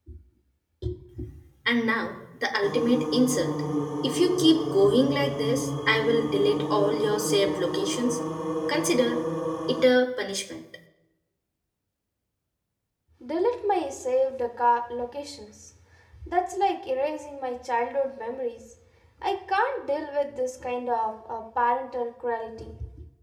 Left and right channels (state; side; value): identical; both; correlation 1.00